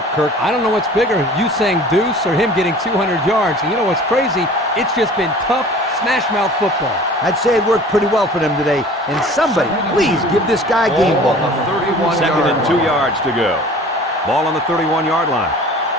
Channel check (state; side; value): normal; both; correlation 0.45